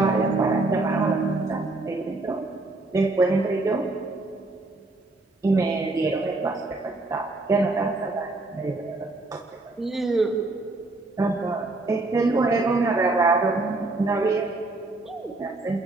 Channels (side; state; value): left; quieter; 3.1 dB